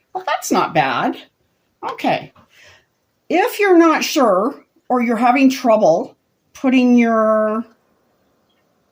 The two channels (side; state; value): both; identical; correlation 1.00